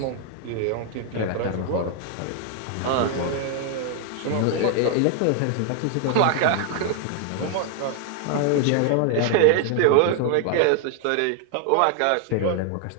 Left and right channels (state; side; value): different; both; correlation 0.00